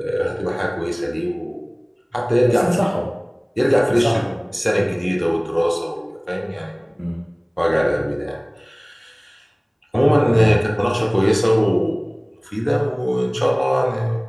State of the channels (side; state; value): both; identical; correlation 1.00